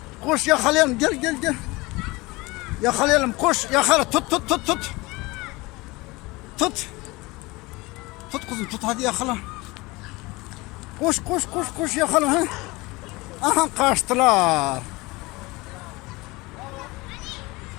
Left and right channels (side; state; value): right; quieter; 22.8 dB